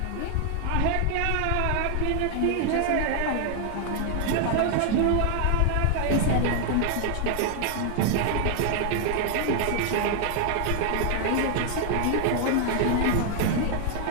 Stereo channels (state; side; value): different; both; correlation 0.00